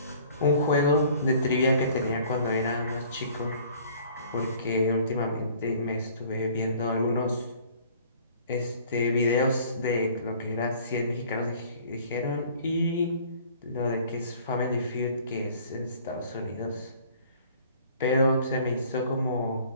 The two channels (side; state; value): both; inverted; correlation -0.53